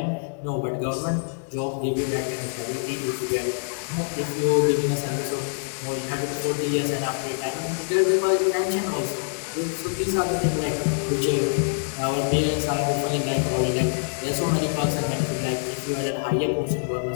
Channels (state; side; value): silent; right; 62 dB below the other